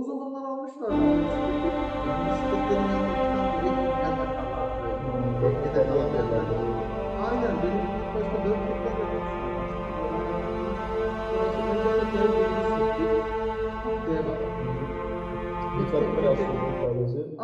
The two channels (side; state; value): both; identical; correlation 1.00